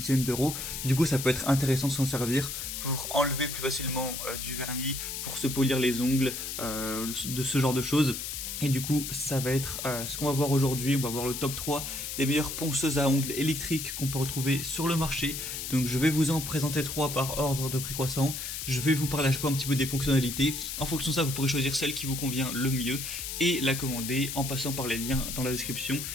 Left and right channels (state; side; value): noise; left; hiss, 5 dB below the sound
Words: d'euros. Du coup ça peut être intéressant de s'en servir pour enlever plus facilement du vernis, pour se polir les ongles, de ce genre de choses. Et du coup, ça va être ce qu'on va voir aujourd'hui. On va voir le top 3 des meilleures ponceuses à ongles électriques qu'on peut retrouver sur le marché. Donc je vais vous en présenter 3 par ordre de prix croissant. Je vais vous parler à chaque fois un petit peu des fonctionnalités. En fonction de ça, vous pourrez choisir celle qui vous convient le mieux et la commander en passant par les liens dans la description